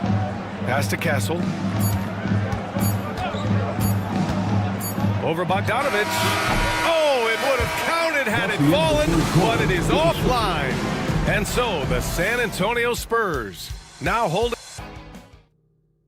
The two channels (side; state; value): both; identical; correlation 1.00